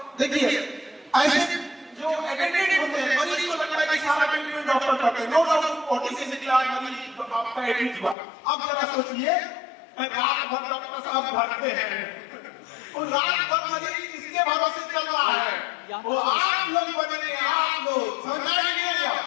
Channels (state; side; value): drops out; right; at 8.2 s